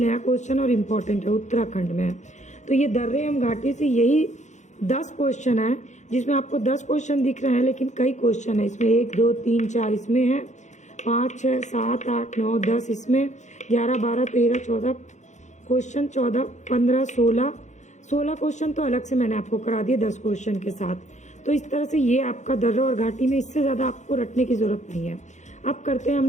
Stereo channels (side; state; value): right; late; 0.34 ms